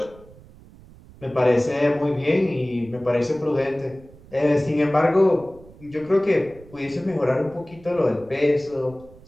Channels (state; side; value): noise; right; rumble, 22 dB below the sound